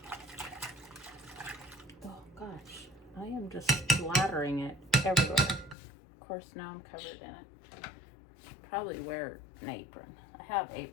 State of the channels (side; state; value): right; drops out; at 5.8 s